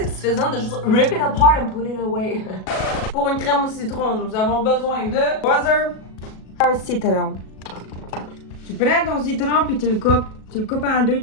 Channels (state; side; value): late; right; 37 ms